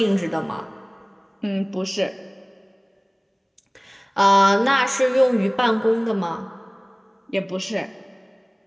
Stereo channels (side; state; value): both; identical; correlation 1.00